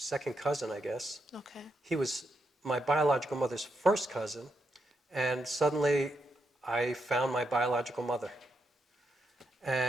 cousin, I guess. Okay. He was my biological mother's first cousin, and suddenly I found my biological mother.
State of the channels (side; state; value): both; normal; correlation 0.82